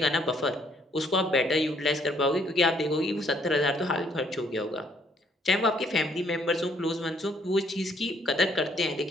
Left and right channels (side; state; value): both; normal; correlation 0.66